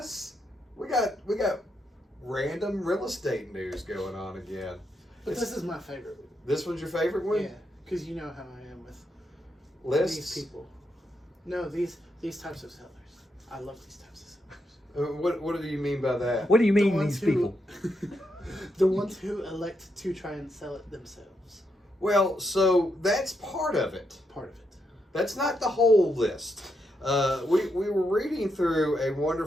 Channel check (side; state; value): both; normal; correlation 0.81